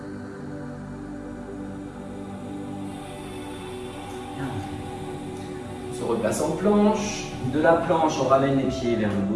On se replace en planche. De la planche, on ramène les pieds vers le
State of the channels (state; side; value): identical; both; correlation 1.00